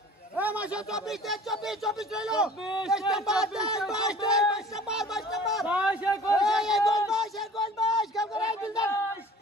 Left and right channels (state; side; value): normal; both; correlation 0.46